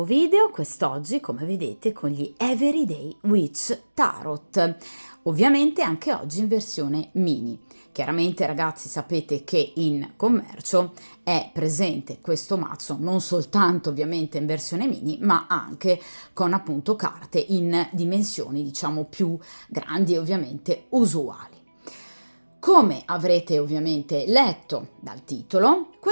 video, quest'oggi come vedete con gli Everyday Witch Tarot, ovviamente anche oggi in versione mini. Chiaramente ragazzi sapete che in commercio è presente questo mazzo non soltanto ovviamente in versione mini ma anche con appunto carte in dimensioni diciamo più grandi e ovviamente usuali. Come avrete ovviamente letto dal titolo,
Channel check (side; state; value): both; inverted; correlation -1.00